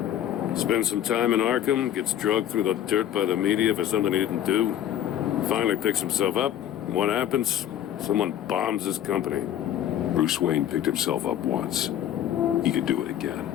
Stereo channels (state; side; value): quieter; right; 11.2 dB